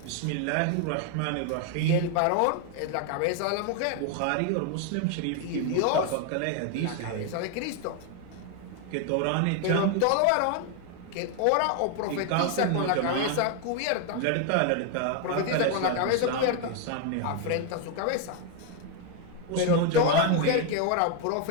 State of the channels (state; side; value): different; both; correlation 0.01